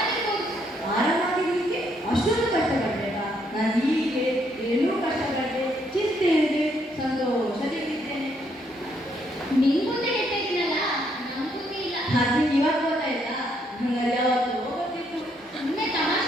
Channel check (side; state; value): both; normal; correlation 0.72